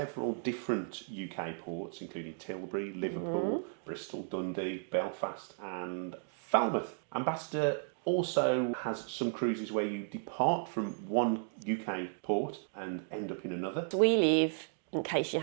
different UK ports, including Tilbury, Liverpool, Bristol, Dundee, Belfast and Falmouth. Ambassador also has some cruises where you depart from one UK port and end up in another. We live, in case you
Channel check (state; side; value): silent; left; digital silence